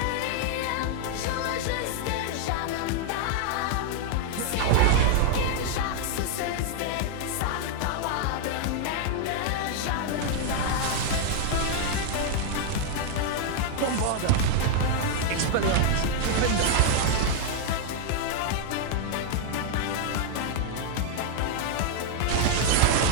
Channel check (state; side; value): different; both; correlation 0.00